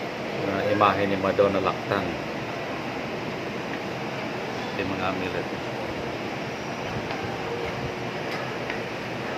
Imahe ni Madonna Lactan. Ito yung mga amulet.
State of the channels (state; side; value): identical; both; correlation 1.00